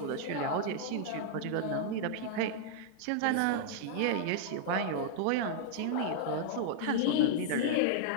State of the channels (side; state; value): both; different; correlation -0.01